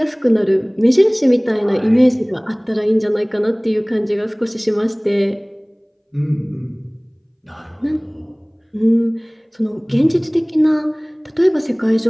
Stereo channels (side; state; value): both; identical; correlation 1.00